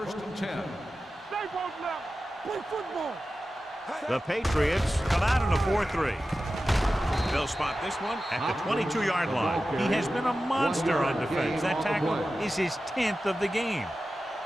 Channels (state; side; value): normal; both; correlation 0.94